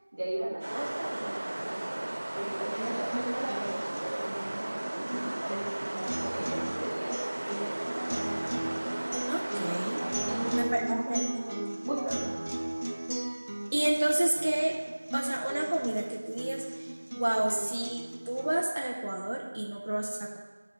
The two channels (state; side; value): inverted; both; correlation -1.00